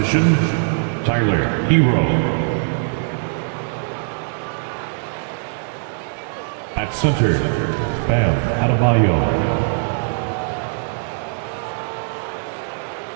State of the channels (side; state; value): left; silent; digital silence